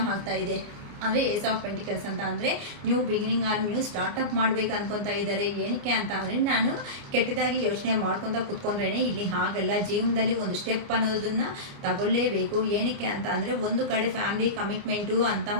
ಆಗ್ತಾ ಇದೆ. ಅಂದರೆ ಏಸ್ ಆಫ್ ಪೆಂಟಿಕಲ್ಸ್ ಅಂತ ಅಂದರೆ new beginning or new startup ಮಾಡಬೇಕು ಅನ್ಕೊತಾ ಇದ್ದಾರೆ. ಏನಕ್ಕೆ ಅಂತ ಅಂದರೆ ನಾನು ಕೆಟ್ಟದಾಗಿ ಯೋಚನೆ ಮಾಡ್ಕೊತ ಕೂತ್ಕೊಂಡ್ರೇನೆ ಇಲ್ಲಿ ಹಾಗಲ್ಲ, ಜೀವನದಲ್ಲಿ ಒಂದು ಸ್ಟೆಪ್ ಅನ್ನೋದನ್ನು ತಗೊಳ್ಳೇಬೇಕು. ಏನಕ್ಕೆ ಅಂತ ಅಂದರೆ ಒಂದು ಕಡೆ ಫ್ಯಾಮಿಲಿ ಕಮಿಟ್ಮೆಂಟು ಅಂತ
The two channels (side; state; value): left; late; 29 ms